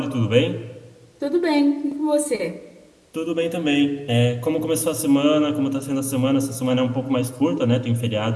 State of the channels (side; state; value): both; identical; correlation 1.00